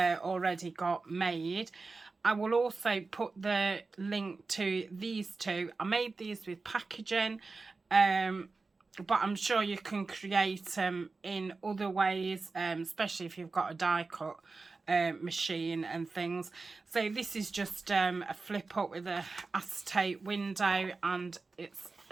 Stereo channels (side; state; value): left; quieter; 3.9 dB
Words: got made. I will also put the link to these two. I made these with packaging, but I'm sure you can create them in other ways, especially if you've got a die cut machine and things. So this is just a flip up with a acetate window, and it's